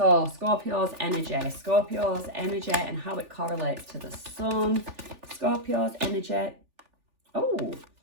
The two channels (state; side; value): late; left; 3.4 ms